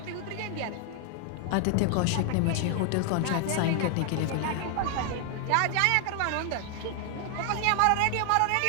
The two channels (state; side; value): different; both; correlation 0.00